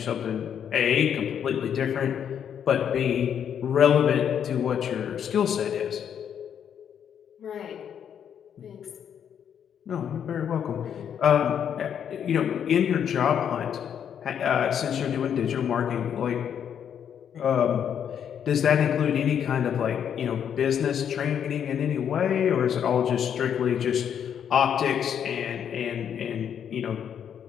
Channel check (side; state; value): right; quieter; 8.6 dB